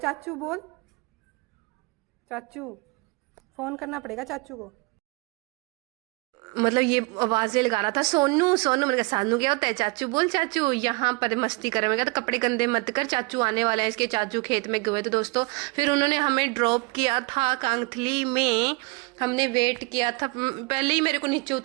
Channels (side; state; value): left; quieter; 27.4 dB